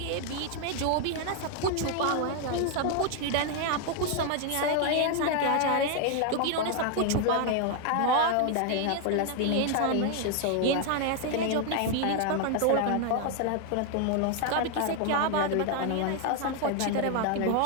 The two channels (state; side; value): different; both; correlation 0.00